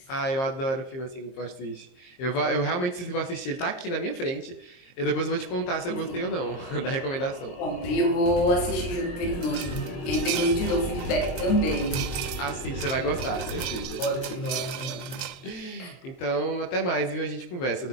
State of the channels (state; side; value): late; right; 22 ms